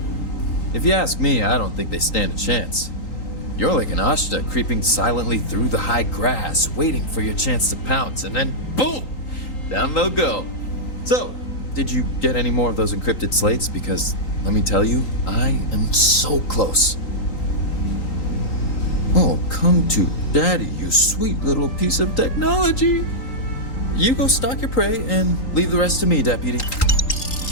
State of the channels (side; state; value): right; late; 3.8 ms